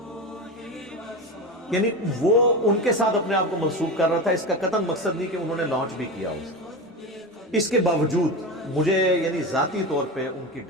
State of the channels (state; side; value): normal; both; correlation 0.23